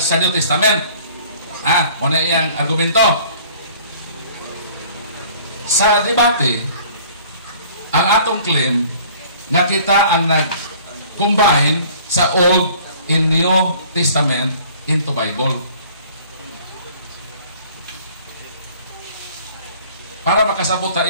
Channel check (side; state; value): both; inverted; correlation -0.52